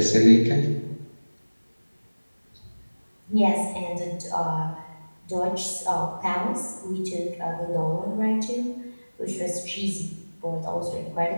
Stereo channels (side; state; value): both; inverted; correlation -1.00